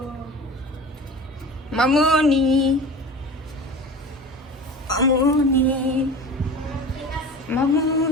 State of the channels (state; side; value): normal; both; correlation 0.36